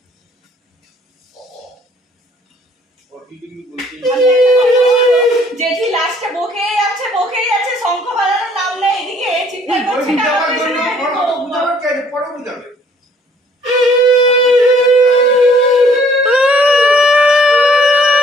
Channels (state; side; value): normal; both; correlation 0.60